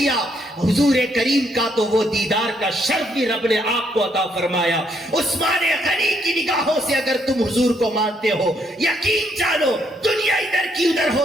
حضور کریم کا، تو وہ دیدار کا شرف بھی رب نے آپ کو عطا فرمایا۔ عثمان غنی کی نگاہوں سے اگر تم حضور کو مانتے ہو، یقین جانو دنیا ادھر کی ادھر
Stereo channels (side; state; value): both; normal; correlation 0.73